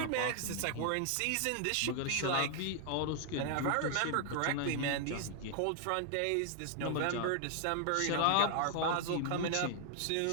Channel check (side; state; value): both; different; correlation 0.00